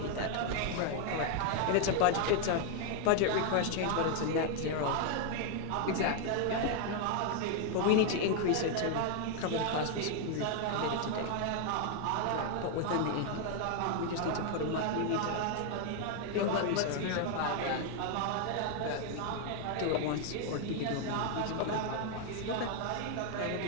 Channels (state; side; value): different; both; correlation 0.00